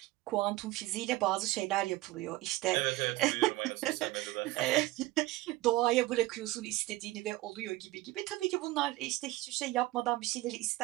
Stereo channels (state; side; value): quieter; left; 18.3 dB